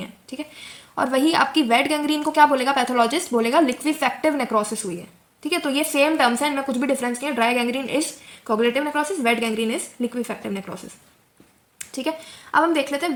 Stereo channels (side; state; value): both; identical; correlation 1.00